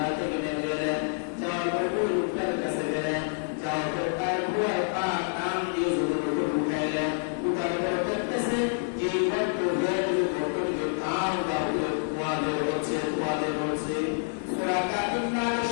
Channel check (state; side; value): silent; right; digital silence